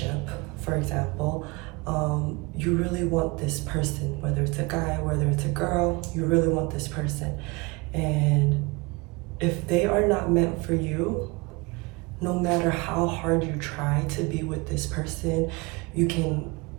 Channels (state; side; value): quieter; left; 26.0 dB